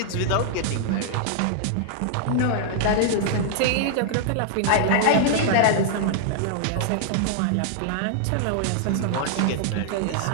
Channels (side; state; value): both; different; correlation -0.01